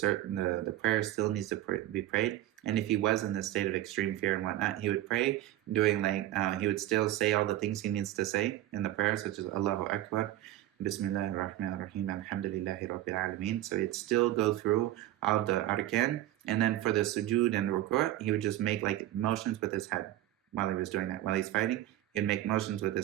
prayer still needs to be prayed. And if he was in this state of extreme fear and whatnot, he would pray doing he would still say all the things he needs to say in the prayer, such as Allahu Akbar, Bismillahir Rahmanir Rahim, Alhamdulillahi Rabbil Alameen. So he'd still go through all of the arkan, and then for the sujood and the ruku', he would just make like motions with his head while he was doing that. While he's fighting, he'd make motions with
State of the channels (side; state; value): left; quieter; 14.3 dB